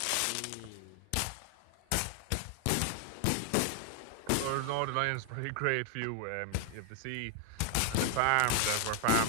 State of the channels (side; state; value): both; different; correlation 0.00